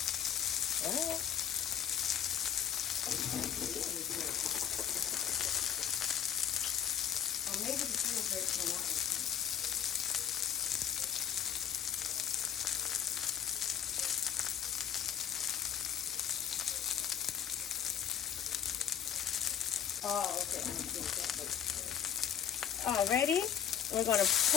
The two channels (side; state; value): right; quieter; 8.5 dB